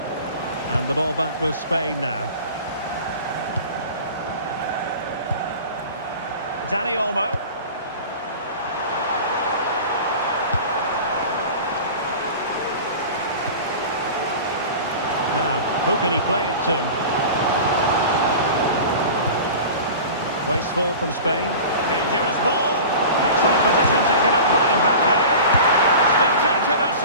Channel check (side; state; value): both; inverted; correlation -0.36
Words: and the ball back with Spain now. Dani Olmo. Now, who can he play it to? Wasteful from Spain. Dangerous ball. Excellent position taken up by Mbappe. Spectacular